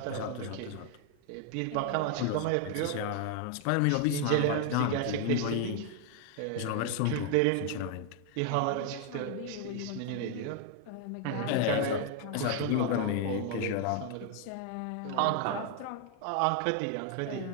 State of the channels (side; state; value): both; different; correlation 0.00